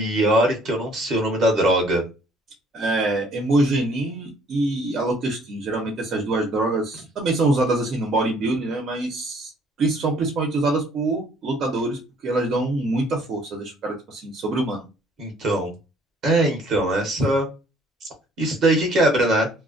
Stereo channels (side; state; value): both; normal; correlation 0.60